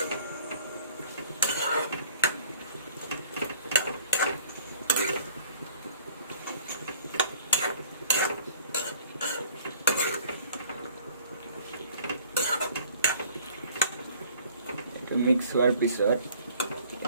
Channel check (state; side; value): inverted; both; correlation -0.52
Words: মিক্স হোৱাৰ পিছত